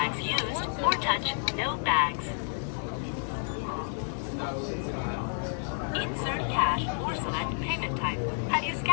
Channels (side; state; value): right; silent; digital silence